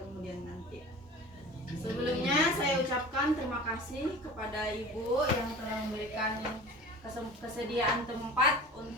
nanti. Sebelumnya saya ucapkan terima kasih kepada Ibu yang telah memberikan kesediaan tempat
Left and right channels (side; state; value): both; normal; correlation 0.38